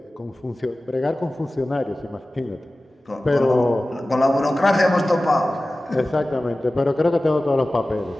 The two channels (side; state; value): both; normal; correlation 0.96